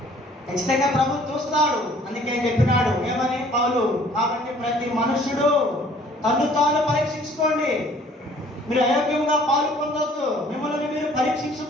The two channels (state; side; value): normal; both; correlation 0.56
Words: ఖచ్చితంగా ప్రభు చూస్తాడు. అందుకే చెప్పినాడు ఏమని పౌలు, కాబట్టి ప్రతి మనుషుడు తను తాను పరీక్షించుకోండి. మీరు అయోగ్యముగా పాలు పొందొద్దు. మిమ్మల్ని మీరు